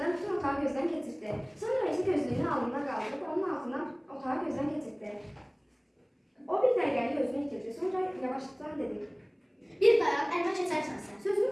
gözündən bütün otağı gözdən keçirdi. Sonra isə gözlüyünü alnına qaldırıb onun altından otağı gözdən keçirdi. O bir dəqiqəlik özünü itirdi. Sonra yavaşlıqla dedi. Bir dayan, əlimə keçərsən sən. Sözünü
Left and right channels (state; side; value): identical; both; correlation 1.00